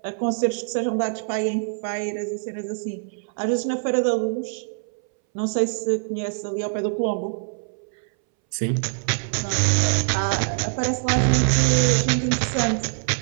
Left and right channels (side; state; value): left; silent; 62 dB below the other